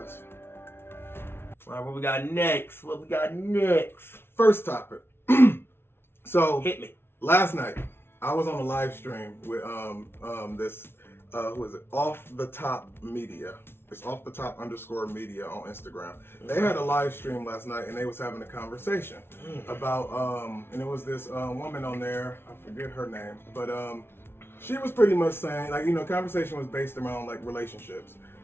All right, what we got next? First topic. So hit me. Last night, I was on a live stream with this who is it? Off the Top Media. It's Off the Top _ Media on Instagram. They had a live stream last night, and they was having a conversation about and it was this woman on there. I forget her name, but she was pretty much saying, like, you know, conversation was based around like relationships,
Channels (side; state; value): right; late; 0.11 ms